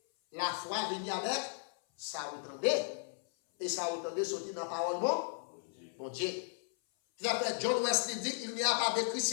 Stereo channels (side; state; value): right; silent; 54 dB below the other